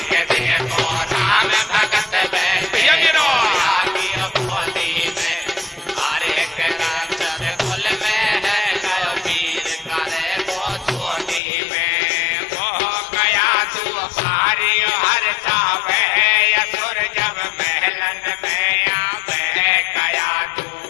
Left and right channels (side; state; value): right; drops out; at 11.4 s